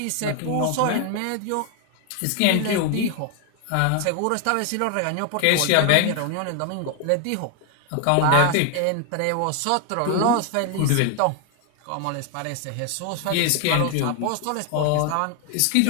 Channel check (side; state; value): both; different; correlation 0.00